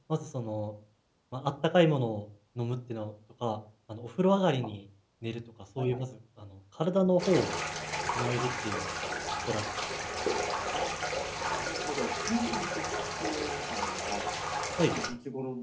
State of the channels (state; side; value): identical; both; correlation 1.00